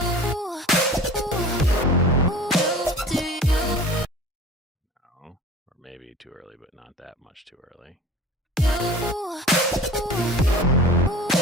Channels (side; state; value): both; normal; correlation 0.40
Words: No, or maybe too early, but not that much too early.